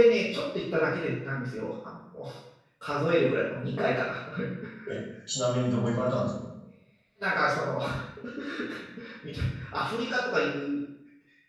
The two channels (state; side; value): identical; both; correlation 1.00